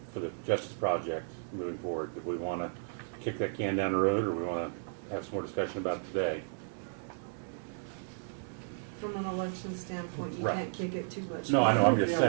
for the Justice Project moving forward, do we want to kick that can down the road, or we want to have some more discussion about it today? From an election standpoint, you Right. can't kick it too much. No, I know, I'm just Yeah.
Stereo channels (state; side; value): silent; left; digital silence